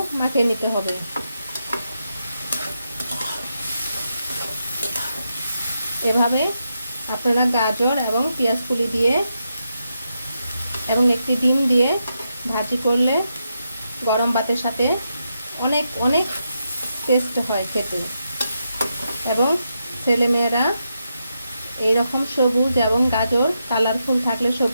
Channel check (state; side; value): inverted; both; correlation -0.84